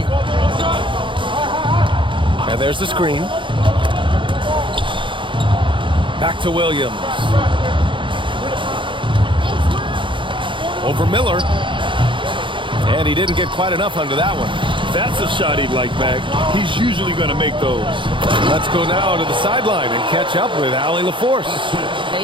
And there's the screen. Back to Williams. Over Miller. And he didn't get quite enough under that one. That's a shot he'd like back. He's usually going to make those. Let's go now to the sideline and catch up with Allie LaForce.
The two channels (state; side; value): late; left; 0.24 ms